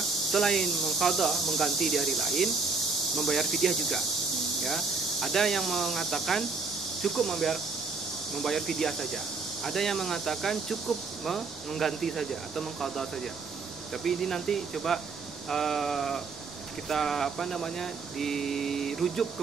mengqadha, mengganti di hari lain, membayar fidyah juga ya. Ada yang mengatakan cukup membayar fidyah saja. Ada yang mengatakan cukup mengganti saja atau mengqadha saja. Tapi ini nanti coba kita dirujuk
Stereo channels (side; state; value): left; quieter; 4.4 dB